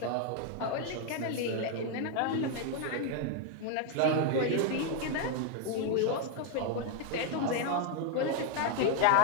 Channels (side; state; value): both; different; correlation 0.01